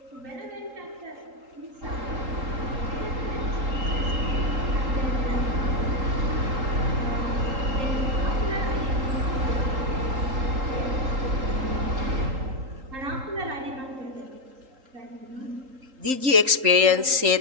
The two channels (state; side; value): late; left; 3.8 ms